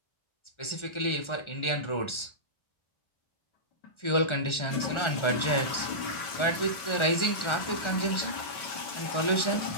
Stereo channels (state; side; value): late; right; 1.4 ms